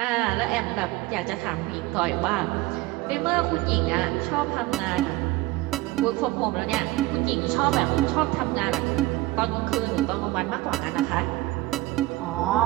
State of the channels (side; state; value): left; quieter; 19.0 dB